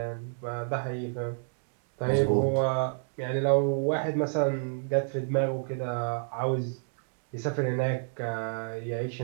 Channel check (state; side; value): silent; left; digital silence